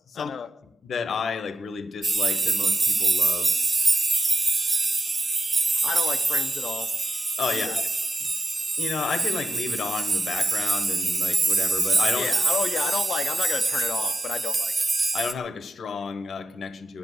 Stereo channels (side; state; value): both; normal; correlation 0.91